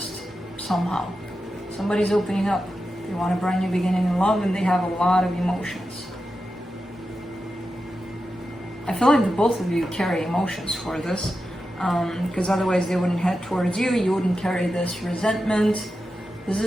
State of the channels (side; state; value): both; normal; correlation 0.90